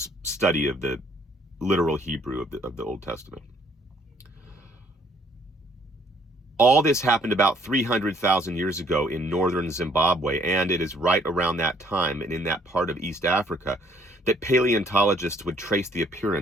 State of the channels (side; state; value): both; normal; correlation 0.62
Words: study of the literal Hebrew of the Old Testament. All this happened about 300,000 years ago in northern Zimbabwe, and it is right around that time and in that part of East Africa that paleontologists would trace the